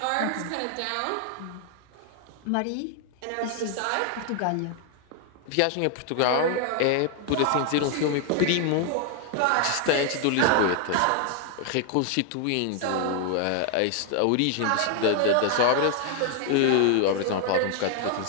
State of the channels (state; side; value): different; both; correlation 0.00